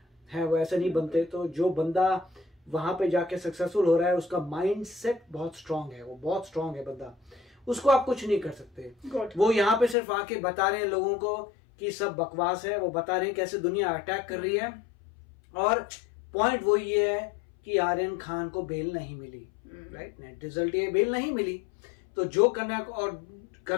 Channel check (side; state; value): right; drops out; at 10.0 s